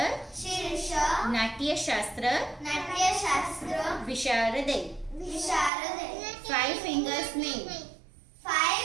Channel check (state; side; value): drops out; left; at 5.7 s